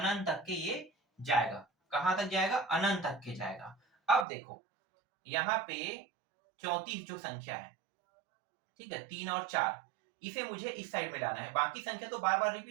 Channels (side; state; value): left; drops out; at 4.2 s